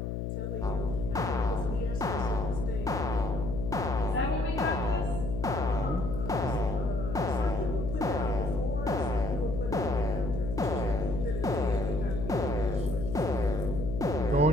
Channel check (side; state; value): left; noise; hum, 3 dB below the sound